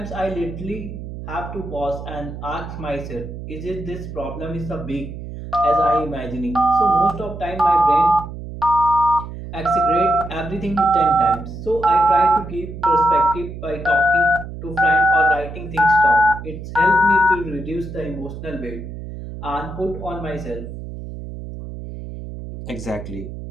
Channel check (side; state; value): right; noise; hum, 10 dB below the sound